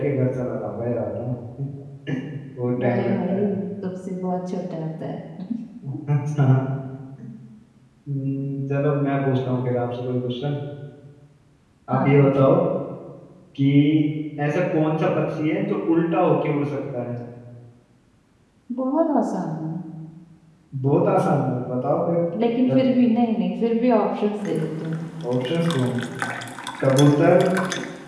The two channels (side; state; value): both; identical; correlation 1.00